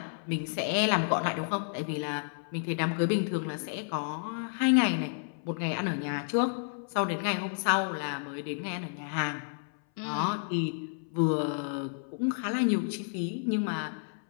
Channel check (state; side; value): silent; right; 57 dB below the other